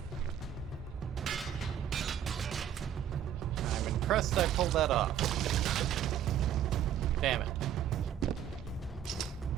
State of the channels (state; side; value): quieter; left; 9.9 dB